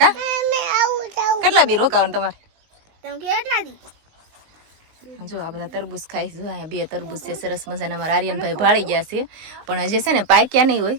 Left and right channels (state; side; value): late; left; 19 ms